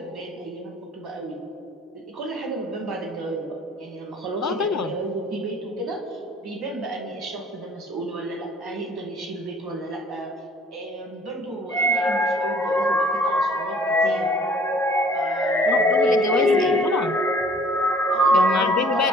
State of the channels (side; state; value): both; normal; correlation 0.54